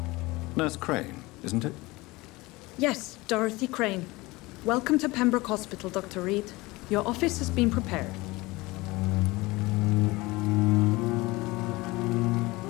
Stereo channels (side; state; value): right; quieter; 21.7 dB